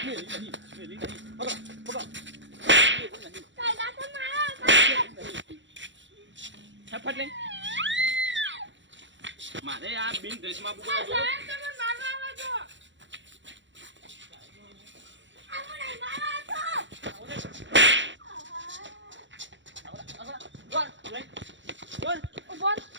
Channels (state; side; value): late; left; 0.54 ms